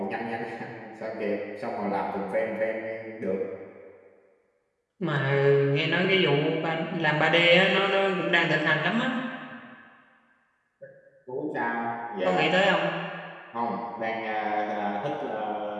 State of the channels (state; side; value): identical; both; correlation 1.00